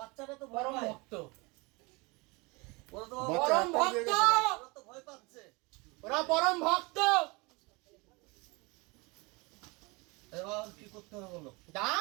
তো ভয় পায়। ভক্ত ওরা তো পরম ভক্ত, ওরা তো ভয় পাচ্ছে। ওরা পরম ভক্ত। এবার কি করতে হবে বলো?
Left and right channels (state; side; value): quieter; left; 26.7 dB